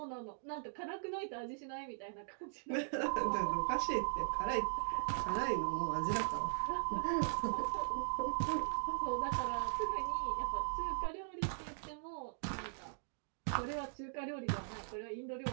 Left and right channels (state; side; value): silent; left; digital silence